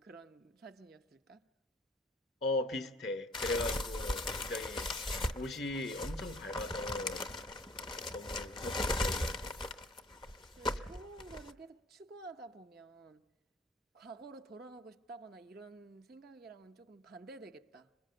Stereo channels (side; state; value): both; normal; correlation 0.54